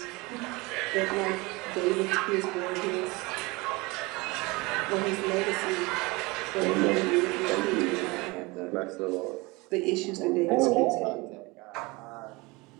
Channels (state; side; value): quieter; left; 24.5 dB